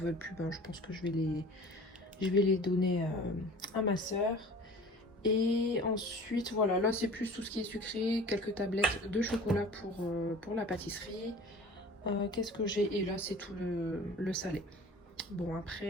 plus. Ben, je pense que je vais les donner à ma soeur. Et ensuite, voilà, là c'est plus tout ce qui est sucré, quelques tablettes de chocolat pour la pâtisserie. Qu'est-ce que j'ai? Et là c'est tout le salé. Bon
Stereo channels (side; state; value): both; normal; correlation 0.43